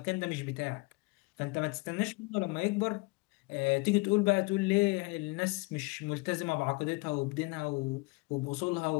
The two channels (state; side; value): quieter; right; 26.7 dB